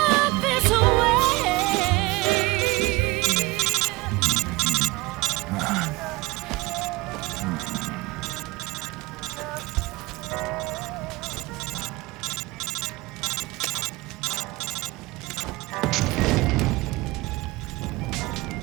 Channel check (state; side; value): quieter; left; 22.1 dB